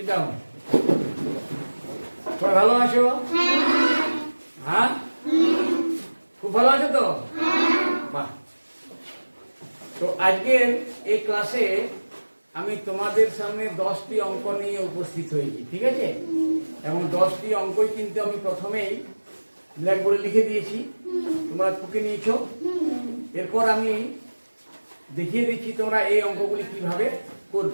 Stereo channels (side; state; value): both; inverted; correlation -1.00